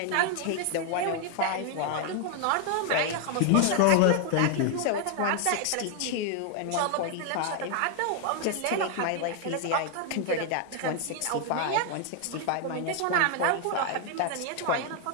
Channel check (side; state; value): both; different; correlation 0.00